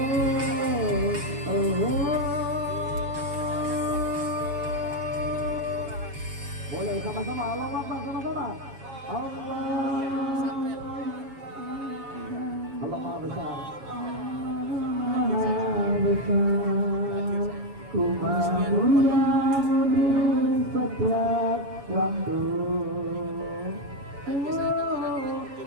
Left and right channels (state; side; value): late; left; 7.3 ms